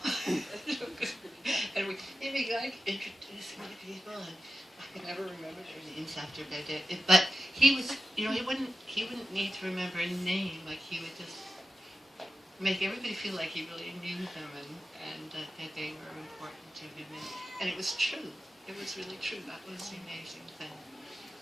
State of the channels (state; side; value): normal; both; correlation 0.94